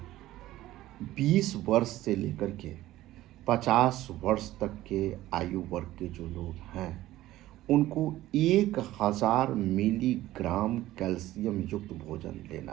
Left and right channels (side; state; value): left; quieter; 15.5 dB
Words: 20 वर्ष से लेकर के 50 वर्ष तक के आयु वर्ग के जो लोग हैं उनको 1000 मिलीग्राम कैल्शियम युक्त भोजन